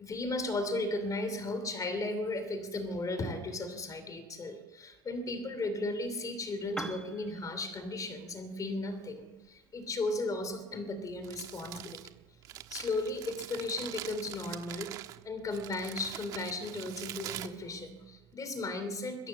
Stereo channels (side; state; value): both; normal; correlation 0.49